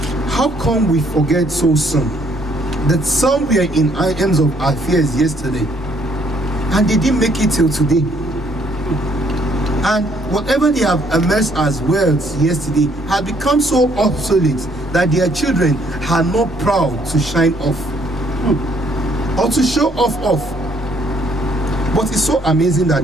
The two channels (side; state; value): both; normal; correlation 0.66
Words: how come we forget so soon that some were in items of affairs yesterday and they didn't make it till today? And whatever they have amassed as wealth yesterday had become so obsolete that their children are not proud to shine off or to show off. But it's so amazing